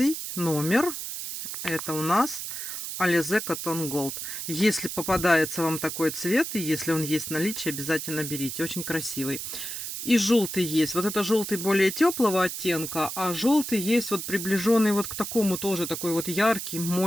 номер. Это у нас Alize Cotton Gold. Если попадается вам такой цвет, и если он есть в наличии, обязательно берите. Очень красивый. И желтый есть. Вот это желтый более теплого оттенка, а желтый есть вот приближенный вот к такому тоже такой вот яркий,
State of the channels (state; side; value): noise; right; hiss, 6 dB below the sound